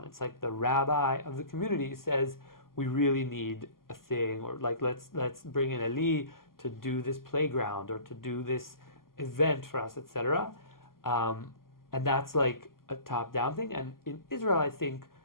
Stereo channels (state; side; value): late; right; 0.92 ms